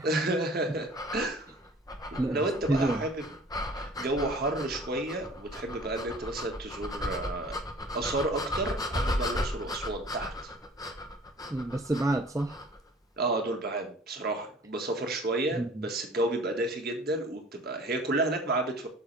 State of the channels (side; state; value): both; normal; correlation 0.48